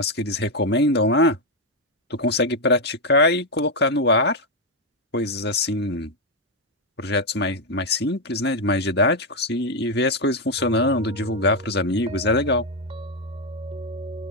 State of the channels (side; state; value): both; normal; correlation 0.03